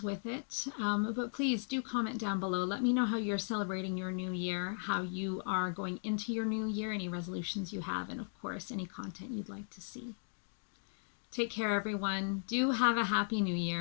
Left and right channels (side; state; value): right; silent; digital silence